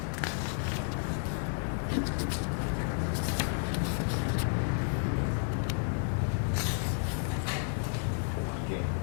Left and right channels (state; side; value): silent; right; 57 dB below the other